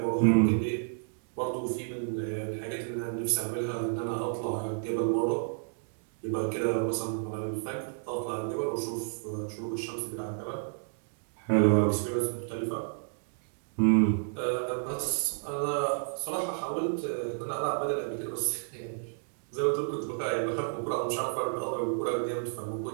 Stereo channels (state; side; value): silent; left; digital silence